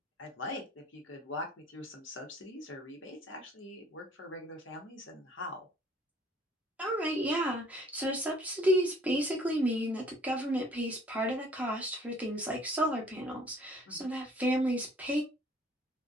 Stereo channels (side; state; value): both; normal; correlation 0.57